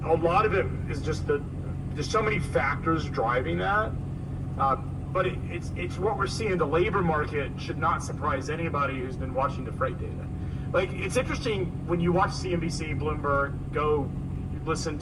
a lot of it is just there's so many factors driving that. But it's what we're seeing. The labor market should not surprise anybody who's been watching the freight data. Like, it's interesting when you watch CNBC, Bloomberg, go listen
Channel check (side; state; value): both; identical; correlation 1.00